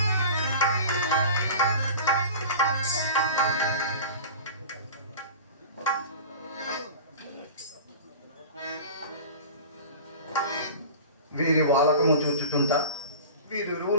వీరి వాలకము చూచుచుంటా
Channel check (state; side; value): inverted; both; correlation -0.36